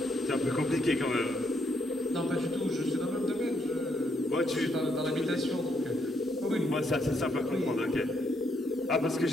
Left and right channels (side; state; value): both; normal; correlation 0.75